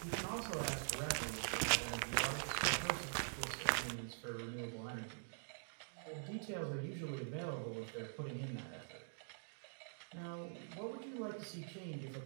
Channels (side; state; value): left; silent; digital silence